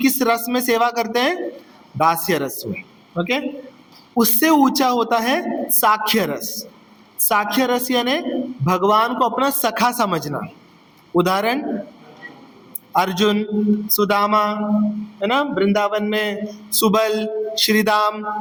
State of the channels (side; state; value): both; identical; correlation 1.00